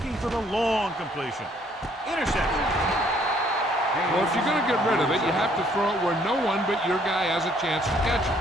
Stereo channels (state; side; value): normal; both; correlation 0.64